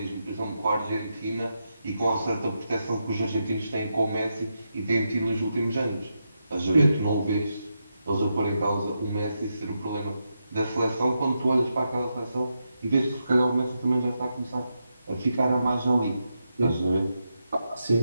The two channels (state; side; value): inverted; both; correlation -0.85